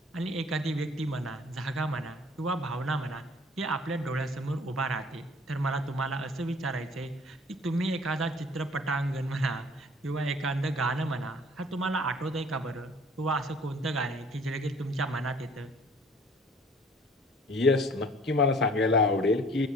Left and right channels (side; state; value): both; normal; correlation 0.53